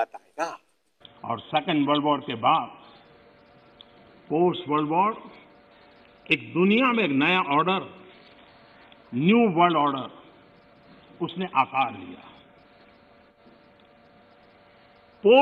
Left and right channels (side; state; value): both; identical; correlation 1.00